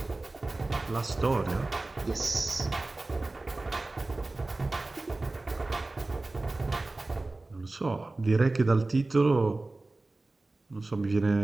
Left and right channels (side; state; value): left; quieter; 3.1 dB